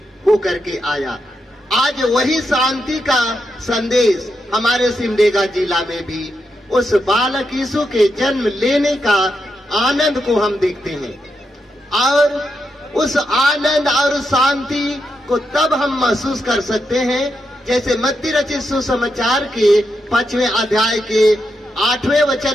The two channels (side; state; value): both; normal; correlation 0.84